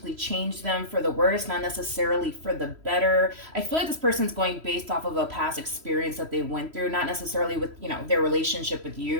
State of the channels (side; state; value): left; late; 3.0 ms